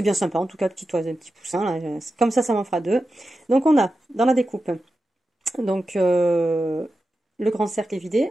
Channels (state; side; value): normal; both; correlation 0.91